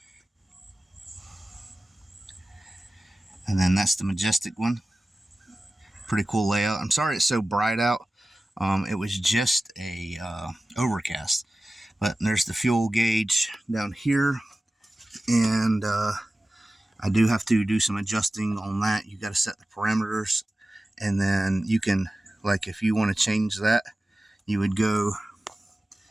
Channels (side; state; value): both; normal; correlation 0.95